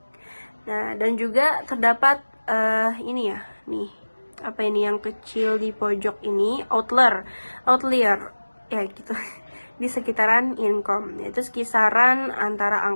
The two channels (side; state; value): both; inverted; correlation -1.00